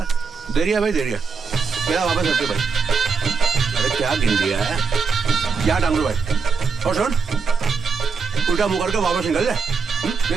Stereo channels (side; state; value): left; quieter; 5.2 dB